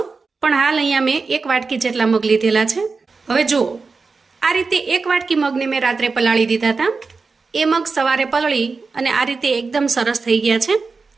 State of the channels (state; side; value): quieter; left; 4.4 dB